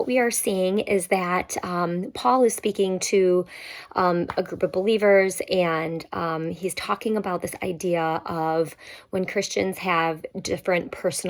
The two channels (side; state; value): both; identical; correlation 1.00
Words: we are seeing is that Paul is speaking to a group of believers, and he's talking about this idea of when Christians have different